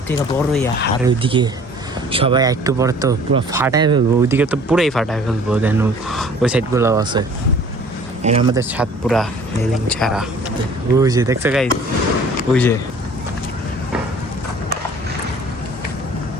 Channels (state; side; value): normal; both; correlation 0.50